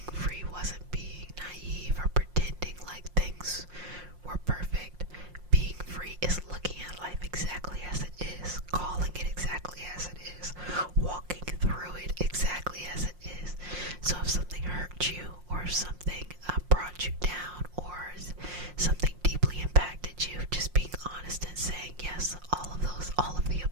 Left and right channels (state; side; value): late; left; 5.6 ms